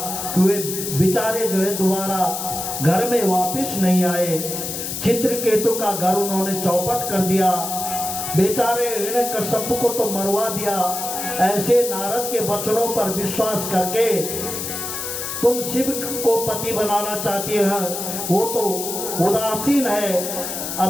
कि वे बेचारे जो है दोबारा घर में वापस नहीं आए। चित्रकेतु का घर उन्होंने चौपट कर दिया। बेचारे हिरण्यकश्यप को तो मरवा दिया। ऐसे नारद के वचनों पर विश्वास करके तुम शिव को पति बनाना चाहती है, वो तो उदासीन है,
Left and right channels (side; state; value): left; noise; hiss, 5 dB below the sound